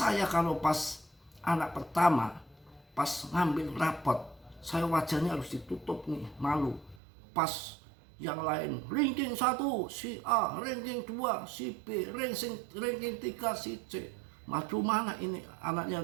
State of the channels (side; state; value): left; drops out; at 7.0 s